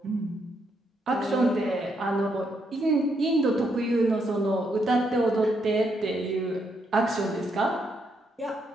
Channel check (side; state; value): both; normal; correlation 0.77